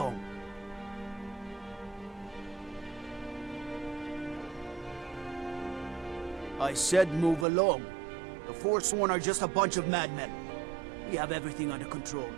I said move along. The Forsworn are just a bunch of madmen. We have everything under control.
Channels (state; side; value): drops out; left; at 7.5 s